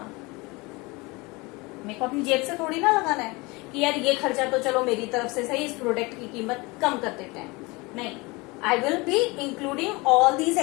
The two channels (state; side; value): quieter; right; 24.8 dB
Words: मेरे को अपनी जेब से थोड़ी ना लगाना है कि यार ये खर्चा तो चलो मेरी तरफ से सही, इस प्रोडक्ट की कीमत कम कर देते हैं, नहीं, I will be including all these